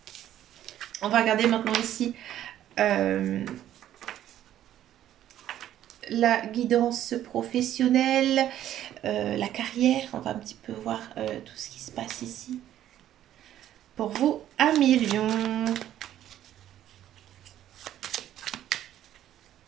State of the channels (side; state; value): left; quieter; 11.9 dB